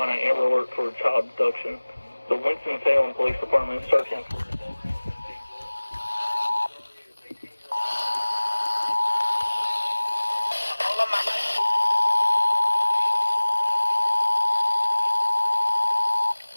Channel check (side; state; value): both; inverted; correlation -1.00